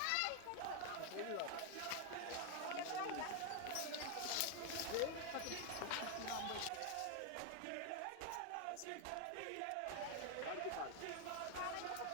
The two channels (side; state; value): both; different; correlation 0.00